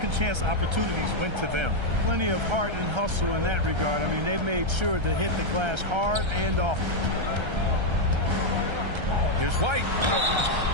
chance opportunities went to them. Plenty of heart and hustle in that regard. I mean, they made sure to hit the glass hard and often. Here's White.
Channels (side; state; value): left; late; 1.3 ms